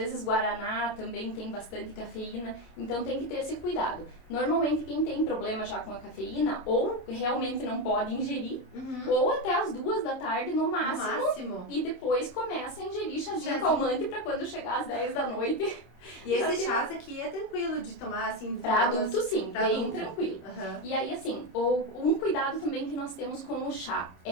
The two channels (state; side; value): late; right; 26 ms